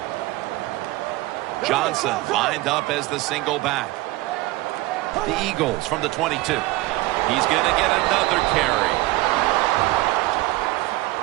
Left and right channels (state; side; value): quieter; left; 19.2 dB